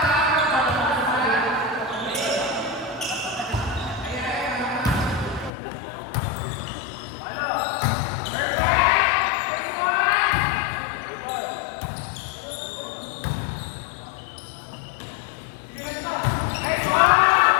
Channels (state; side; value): drops out; right; at 5.5 s